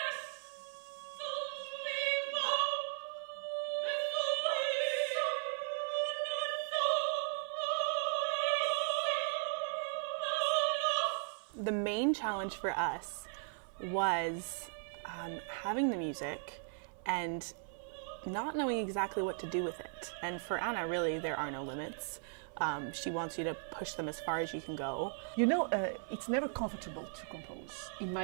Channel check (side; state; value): left; silent; 53 dB below the other